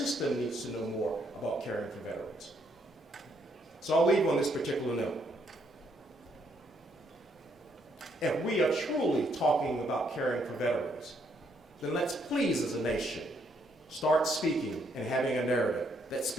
needs to know more about caring for veterans. So I'll leave on this particular note. If we are truly talking about caring for veterans, then let's please as a nation start speaking and having a narrative that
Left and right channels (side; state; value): both; normal; correlation 0.72